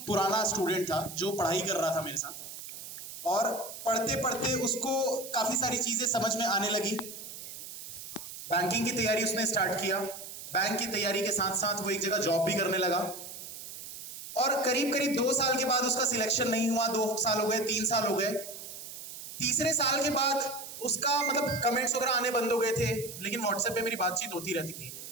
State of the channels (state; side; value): noise; right; hiss, 11 dB below the sound